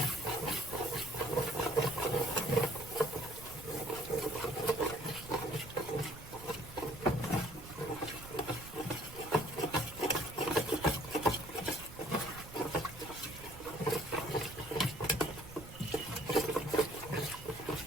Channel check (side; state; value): right; noise; rumble, 15 dB below the sound